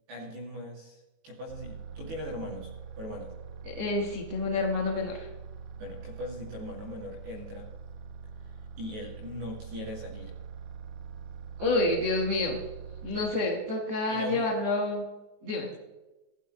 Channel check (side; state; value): left; late; 19 ms